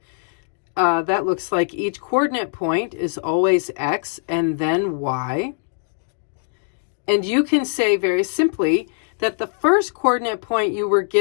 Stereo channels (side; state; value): right; silent; digital silence